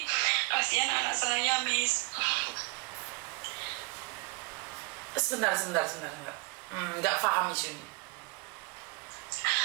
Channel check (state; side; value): quieter; left; 26.8 dB